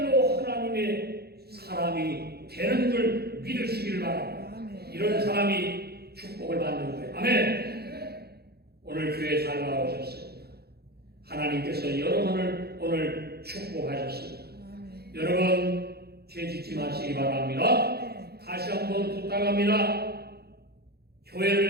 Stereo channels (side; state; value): left; late; 0.46 ms